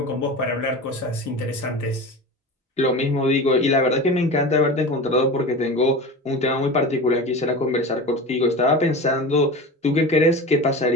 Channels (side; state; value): both; normal; correlation 0.30